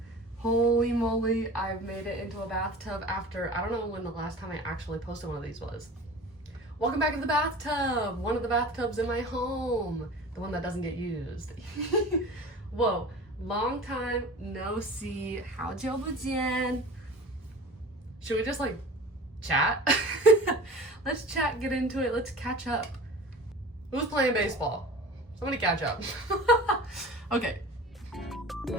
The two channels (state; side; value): normal; both; correlation 0.39